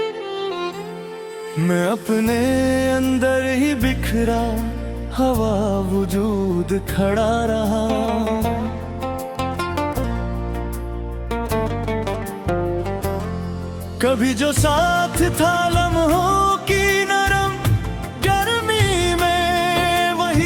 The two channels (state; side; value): identical; both; correlation 1.00